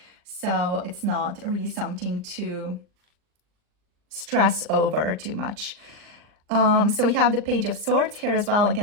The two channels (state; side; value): late; left; 39 ms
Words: So it's not really something to stress over too much. So we have the Page of Swords here as well.